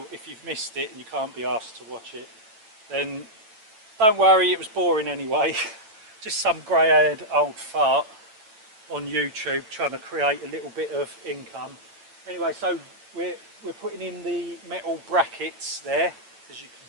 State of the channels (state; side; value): late; left; 9.0 ms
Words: if you've missed it and you can't be asked to watch it, then don't worry, it was boring anyway. Just some grey-haired old fart on YouTube trying to create a little bit of income. Anyway, so we're putting in the metal brackets there, as you can